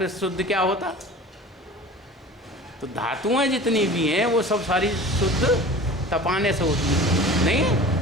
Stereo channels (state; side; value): normal; both; correlation 0.39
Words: शुद्ध क्या होता? तो धातुएं जितनी भी हैं वो सब सारी शुद्ध तपाने से होती है।